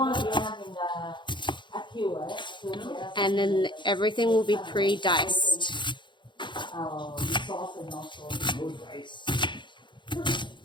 and then everything will be pre-diced.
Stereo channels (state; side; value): late; right; 0.23 ms